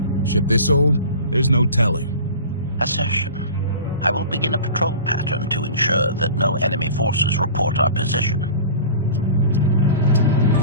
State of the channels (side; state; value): both; inverted; correlation -0.39